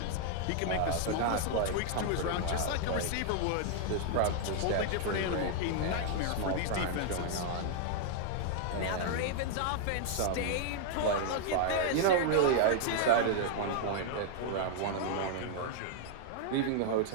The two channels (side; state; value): both; different; correlation -0.01